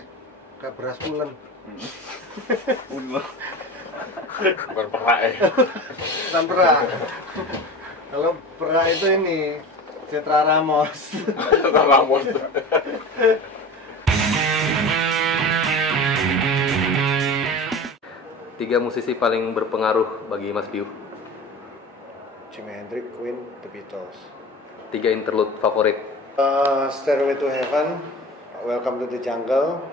kayak beras ulen. Bukan perak ya. Bukan perak. Kalau perak itu ini Citra Ramos. Tiga musisi paling berpengaruh bagi Mas Piu. Jimi Hendrix, Queen, The Beatles. Tiga interlude favorit. Stairway to Heaven, Welcome to the Jungle,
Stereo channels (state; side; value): normal; both; correlation 0.34